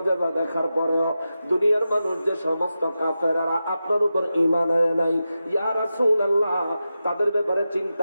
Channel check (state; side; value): inverted; both; correlation -0.91